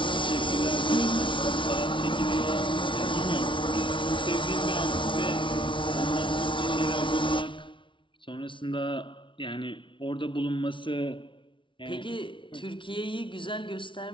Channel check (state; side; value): late; right; 0.24 ms